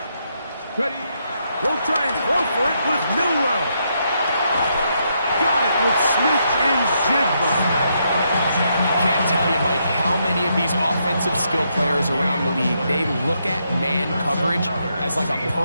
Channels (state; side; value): inverted; both; correlation -0.78